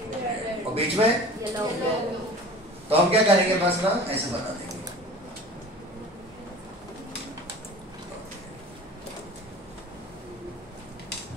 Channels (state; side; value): normal; both; correlation 0.40